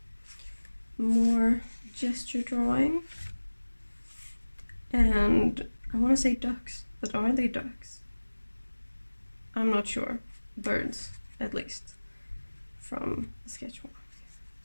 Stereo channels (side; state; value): both; inverted; correlation -1.00